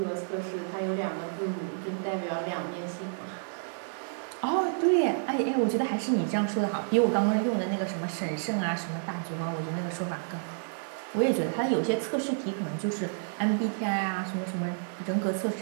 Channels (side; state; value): left; silent; digital silence